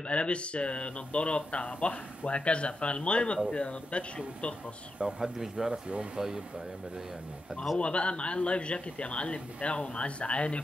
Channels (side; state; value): both; normal; correlation 0.87